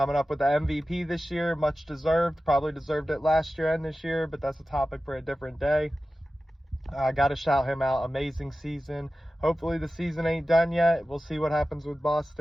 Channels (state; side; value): normal; both; correlation 0.95